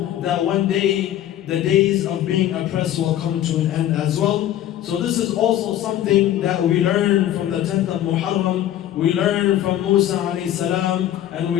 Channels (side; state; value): right; quieter; 12.2 dB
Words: that one day the days of being oppressed will come to an end as well. So this is also something that we learn from the 10th of Muharram, we learn from Musa alayhi salam, and